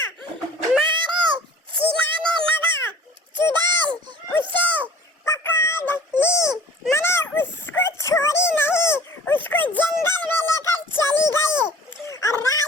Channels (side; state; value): both; normal; correlation 0.47